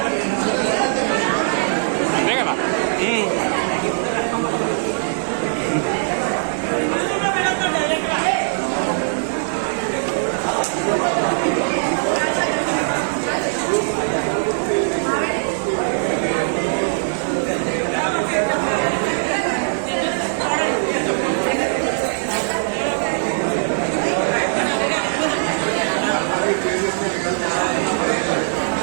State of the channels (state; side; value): silent; left; digital silence